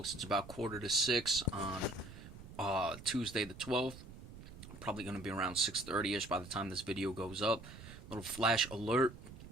It's about 5:45 on Tuesday the 12th. Probably going to be around 6:30ish by the time this video goes up. Little flash alert.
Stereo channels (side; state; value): right; noise; rumble, 15 dB below the sound